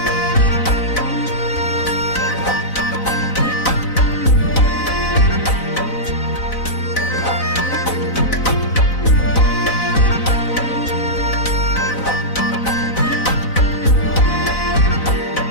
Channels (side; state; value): right; late; 4.0 ms